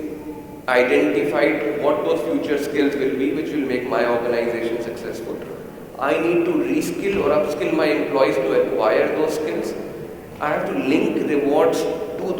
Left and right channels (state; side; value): identical; both; correlation 1.00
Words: identified what those future skills will be, which will make my organization successful. I need to reskill or upskill my employees to acquire those skills. I have to link rewards to